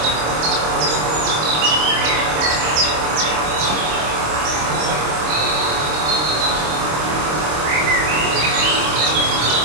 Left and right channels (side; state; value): left; late; 26 ms